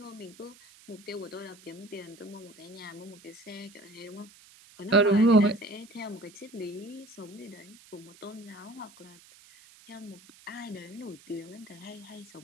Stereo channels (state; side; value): noise; right; hiss, 23 dB below the sound